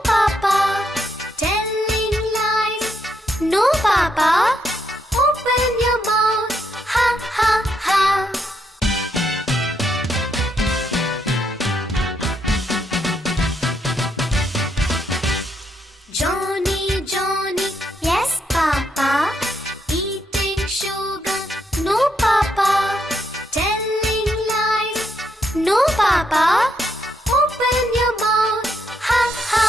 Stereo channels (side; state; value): both; normal; correlation 0.77